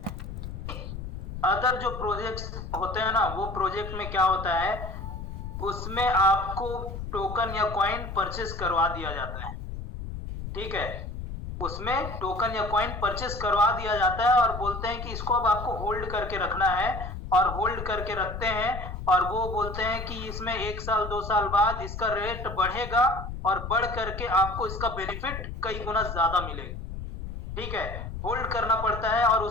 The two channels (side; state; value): left; noise; rumble, 8 dB below the sound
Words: अदर जो प्रोजेक्ट्स होते हैं ना, वो प्रोजेक्ट में क्या होता है, उसमें आपको टोकन या कॉइन परचेस करवा दिया जाता है। ठीक है, उसमें टोकन या कॉइन परचेस करवा दिया जाता है और बोलते हैं कि इसको अब आपको होल्ड करके रखना है, और होल्ड करके रखते हैं और वो बोलते हैं कि इसमें 1 साल 2 साल बाद इसका रेट बढ़ेगा और बढ़ करके आपको इसका बेनिफिट कई गुना ज्यादा मिलेगा। ठीक है, होल्ड करना पड़ता है और